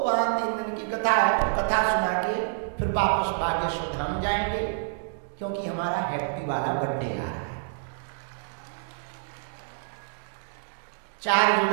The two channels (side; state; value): left; silent; digital silence